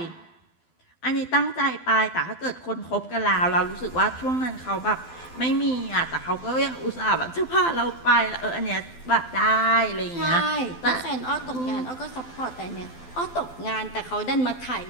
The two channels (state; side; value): late; right; 12 ms